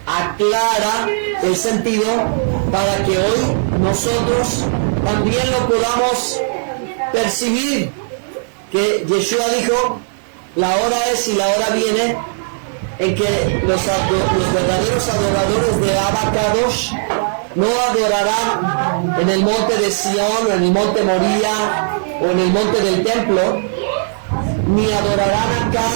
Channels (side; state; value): left; silent; digital silence